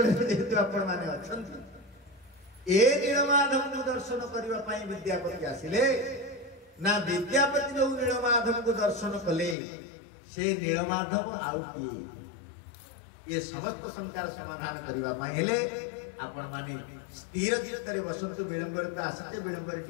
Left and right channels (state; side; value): drops out; right; at 9.6 s